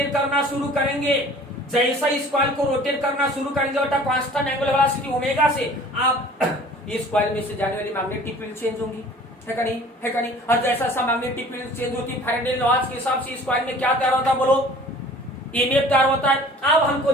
करना शुरू करेंगे, जैसा इस कॉइल को रोटेट करना शुरू करेंगे बेटा कांस्टेंट एंगुलर वेलोसिटी ओमेगा से, आप इस कॉइल में से जाने वाली मैग्नेटिक फील्ड चेंज होंगी, है का नहीं? है का नहीं? और जैसा सा मैग्नेटिक फील्ड चेंज होती है फैराडे लॉज के हिसाब से इस कॉइल में क्या तैयार होता है बोलो? ईएमएफ तैयार होता है। अब हमको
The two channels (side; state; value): both; normal; correlation 0.48